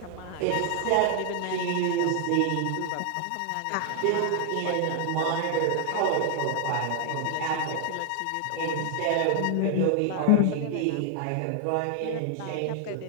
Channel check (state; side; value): different; both; correlation 0.00